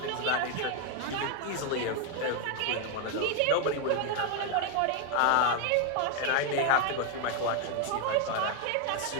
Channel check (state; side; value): different; both; correlation 0.01